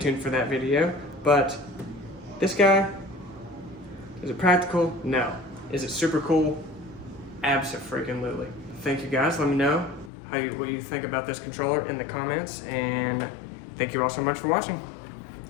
for that video. But this guy, is it practical? No. Is it super cool? Abso-freaking-lutely. Thank you guys. Let me know what you think about this controller in the comments, and thank you all so much for watching.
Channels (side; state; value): right; drops out; at 10.1 s